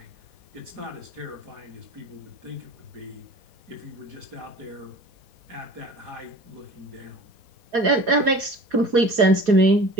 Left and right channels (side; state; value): left; late; 4.2 ms